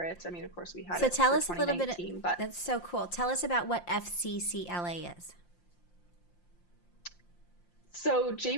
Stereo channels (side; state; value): right; late; 5.7 ms